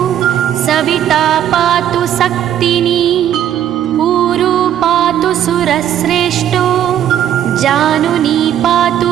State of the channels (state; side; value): quieter; left; 10.7 dB